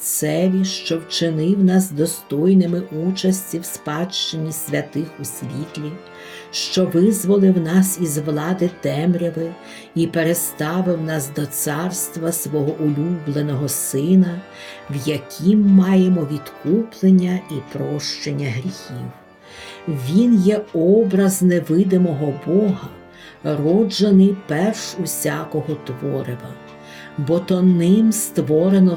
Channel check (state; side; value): identical; both; correlation 1.00